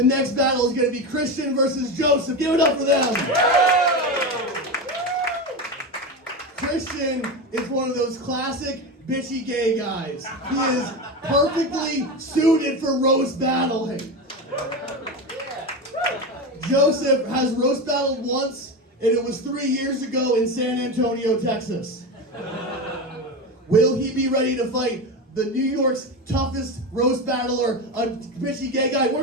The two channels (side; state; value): both; normal; correlation 0.20